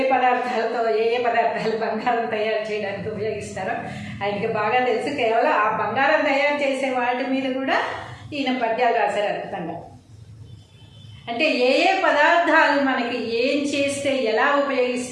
పదార్థాలు బంగారం తయారు చేయడానికి ఉపయోగిస్తారో ఆయనకి బాగా తెలుసు. కేవలం ఆ బంగారం తయారు చేసే వాటి మీద కూడా ఈయన పద్యాలు రాశారు అద్భుతంగా. అంటే ఏ పదార్థాలు మనకి ఏం చేస్తే ఎలా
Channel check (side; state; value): both; identical; correlation 1.00